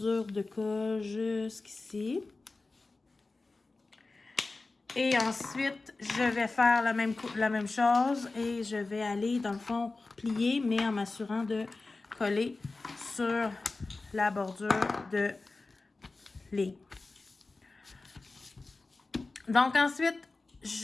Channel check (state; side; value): quieter; right; 3.5 dB